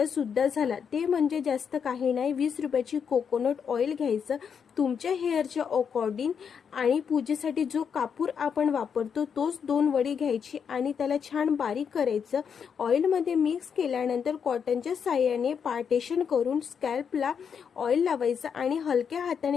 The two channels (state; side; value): quieter; right; 7.0 dB